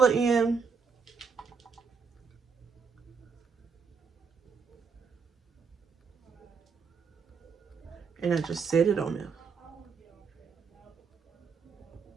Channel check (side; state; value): left; quieter; 5.6 dB